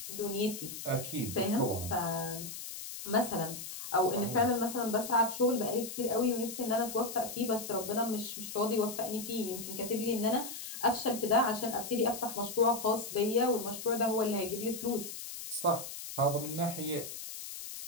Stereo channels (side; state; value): left; noise; hiss, 9 dB below the sound